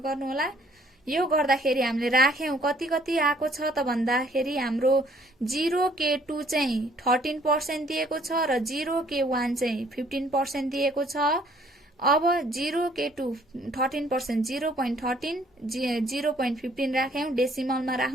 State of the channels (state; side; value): normal; both; correlation 0.61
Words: गर्नु होला। यो गर्दाखेरि हामीले राख्यौं कति आको छ त भन्दाखेरि हाम्रो 0k2 चाहिँ 13% दिएको छ र 0k1 चाहिँ 15% दिएको छ। अब 0k2 13% 0.13 0.15 राख्यौं, डेसिमलमा